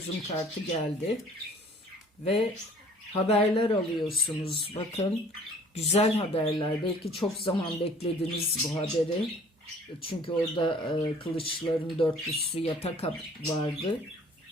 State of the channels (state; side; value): normal; both; correlation 0.53